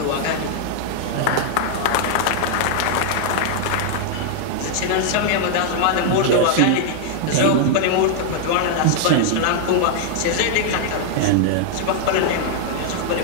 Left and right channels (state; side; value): different; both; correlation 0.00